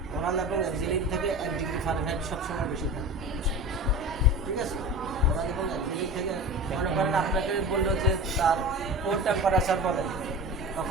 ওরাল এবং এক্সিলিন থেকে 1 ডিগ্রি ফারেনহাইট সবসময় বেশি থাকে, ঠিক আছে। ওরাল এবং এক্সিলিন থেকে মনে করেন আপনাকে বললো যে তার কোর টেম্পারেচার বলেন,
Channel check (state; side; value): normal; both; correlation 0.32